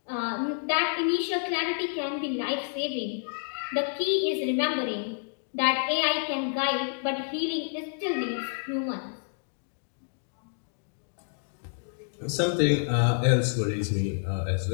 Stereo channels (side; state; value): right; silent; digital silence